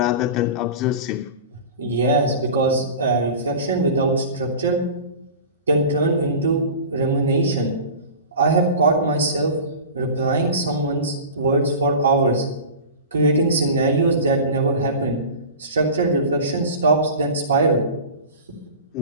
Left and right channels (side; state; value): both; inverted; correlation -0.35